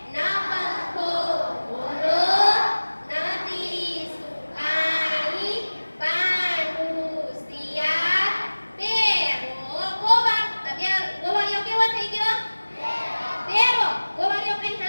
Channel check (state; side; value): inverted; both; correlation -1.00